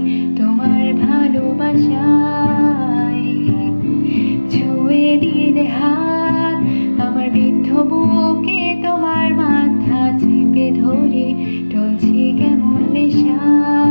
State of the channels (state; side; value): inverted; both; correlation -1.00